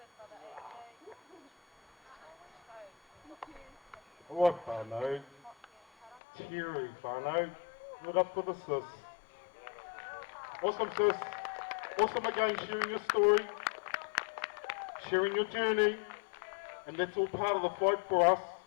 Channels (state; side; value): drops out; right; at 6.2 s